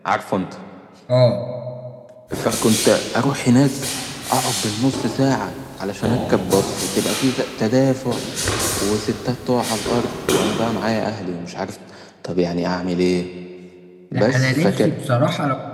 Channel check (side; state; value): both; identical; correlation 1.00